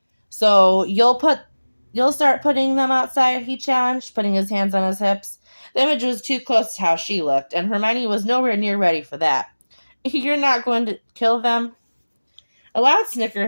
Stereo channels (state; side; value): inverted; both; correlation -1.00